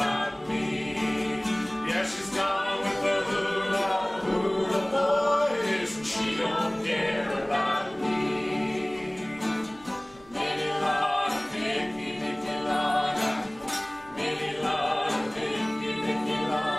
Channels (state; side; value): noise; right; hum, 26 dB below the sound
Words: me. Yeah, she's gone with the hula hula boys, and she don't care about me. Lady Lana, Vicky, Vicky Lana. Lady Lana, Vicky, Vicky